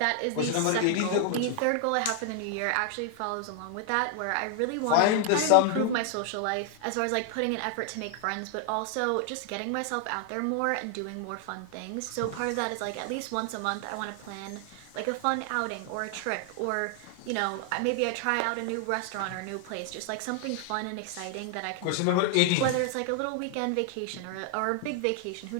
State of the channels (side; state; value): both; different; correlation 0.00